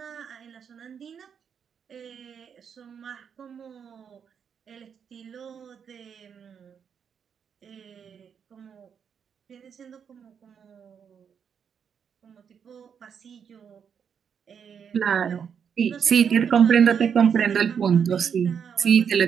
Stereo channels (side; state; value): left; quieter; 7.3 dB